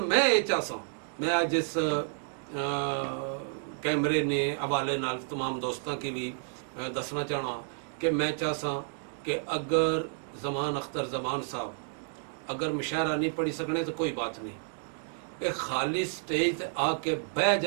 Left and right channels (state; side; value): silent; left; digital silence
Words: मैं ये चाहसा मैं अज इस कैमरे ने हवाले नाल तमाम दोस्तों की भी दसना चाहना कि मैं चाहसा कि अगर जमान अख्तर जमान साहब अगर मुशायरा नहीं पढ़ी सकने तो कोई बात नहीं, एक खाली स्टेज ते आके बह